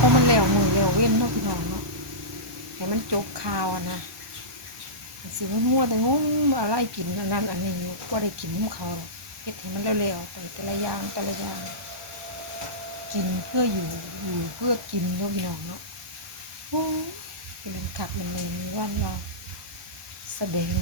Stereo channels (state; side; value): late; left; 1.2 ms